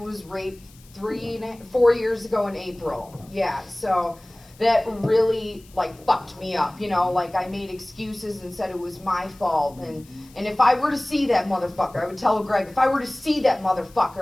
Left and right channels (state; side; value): noise; left; hiss, 26 dB below the sound